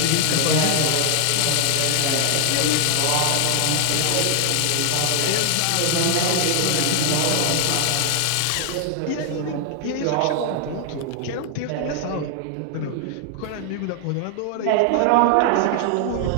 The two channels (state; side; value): different; both; correlation 0.00